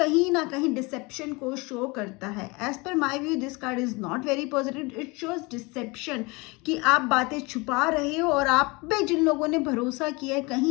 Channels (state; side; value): quieter; right; 26.1 dB